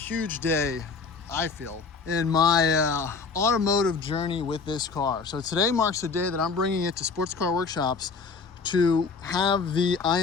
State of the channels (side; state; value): right; quieter; 4.8 dB